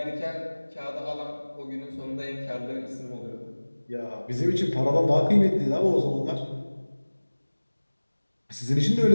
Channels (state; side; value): inverted; both; correlation -1.00